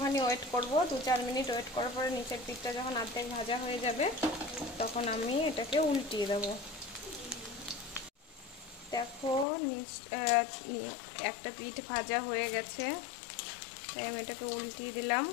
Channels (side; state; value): right; drops out; at 9.5 s